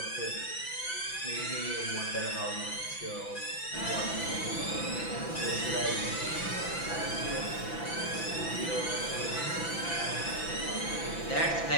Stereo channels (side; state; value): right; late; 6.0 ms